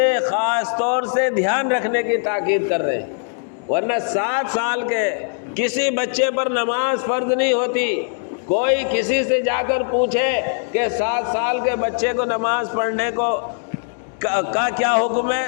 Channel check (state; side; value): silent; right; digital silence